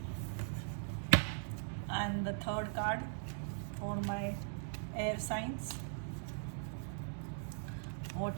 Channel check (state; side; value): silent; left; digital silence